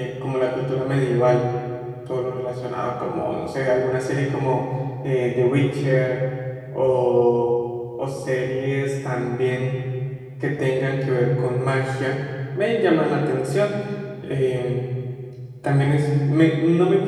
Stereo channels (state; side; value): identical; both; correlation 1.00